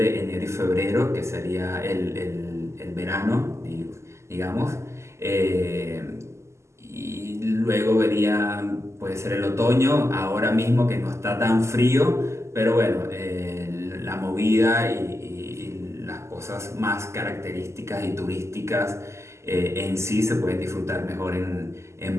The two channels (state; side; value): late; left; 0.13 ms